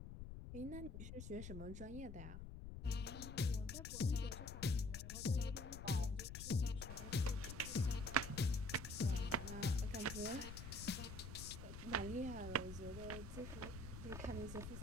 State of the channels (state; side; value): noise; left; rumble, 8 dB below the sound